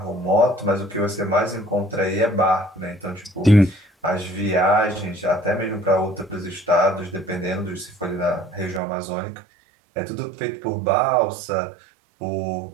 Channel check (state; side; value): drops out; left; at 8.8 s